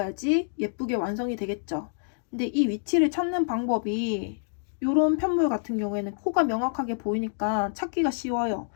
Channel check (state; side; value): silent; right; digital silence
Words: 예쁘게 완성이 되겠죠. 근데 이 위치를 찾는 방법이, 이런 편물 같은 경우에는 코가 명확하게 보이니까 찾기가 쉬워요.